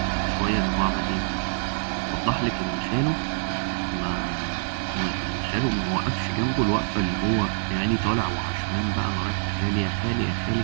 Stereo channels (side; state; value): left; silent; digital silence